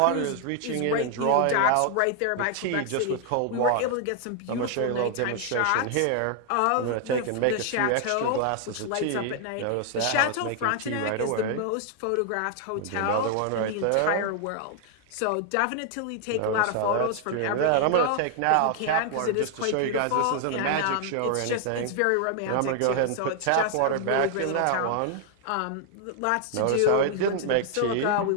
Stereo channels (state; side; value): different; both; correlation 0.00